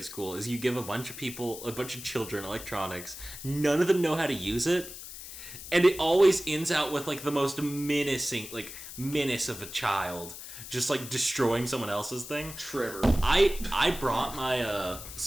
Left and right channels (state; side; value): noise; left; hiss, 12 dB below the sound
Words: school is you give a bunch of children electronics, none of them know how to use it, and it always ends out with like the most menace of a child just like destroying someone else's thing. Trevor. I brought my